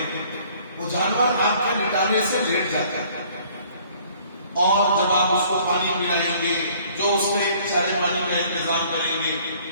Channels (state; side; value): inverted; both; correlation -0.56